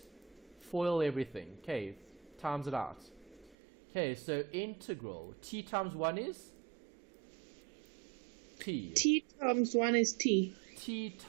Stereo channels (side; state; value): left; drops out; at 3.6 s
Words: FOIL everything. Okay, times it out. Okay, so integral. T times 1 is? T. T times 1 is T. T